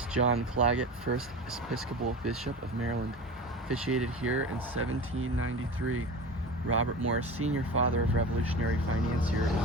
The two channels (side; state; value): both; normal; correlation 0.31